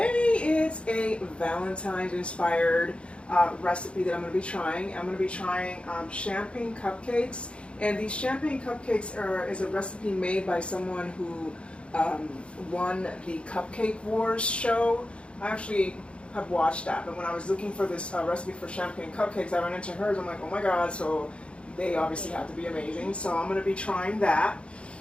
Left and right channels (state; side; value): late; right; 0.058 ms